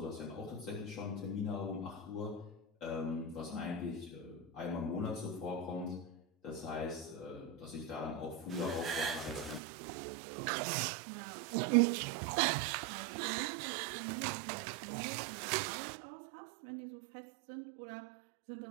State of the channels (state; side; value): drops out; left; at 9.6 s